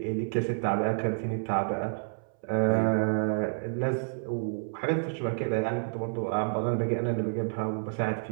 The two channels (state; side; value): silent; left; 58 dB below the other